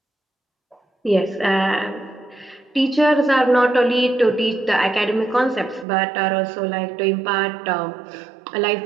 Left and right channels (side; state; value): left; drops out; at 5.9 s